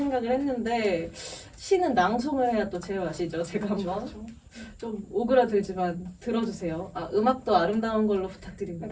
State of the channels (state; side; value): identical; both; correlation 1.00